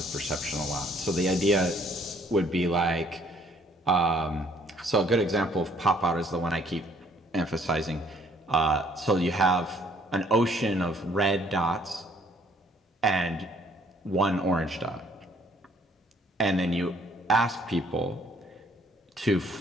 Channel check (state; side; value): normal; both; correlation 0.62